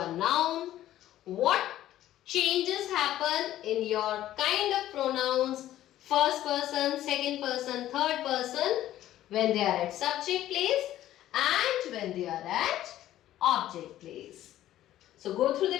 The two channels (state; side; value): quieter; right; 13.3 dB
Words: noun, what changes happen in your kind of pronouns, first person, second person, third person when they are at subject place and when they are at object place. So go through the